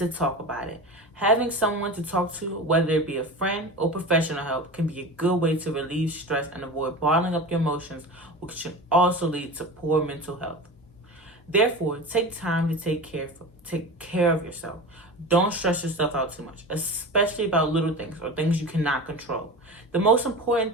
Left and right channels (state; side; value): normal; both; correlation 0.31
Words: talk about it. Having someone to talk to, whether it be a friend or professional help, can be a good way to relieve stress and avoid bottling up your emotions, which can also lead to poor mental health. Therefore, take time to take care of yourself. Don't stress yourself out too much, especially about little things or things you cannot control. The most